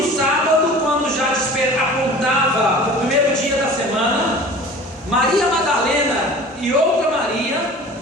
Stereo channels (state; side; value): normal; both; correlation 0.42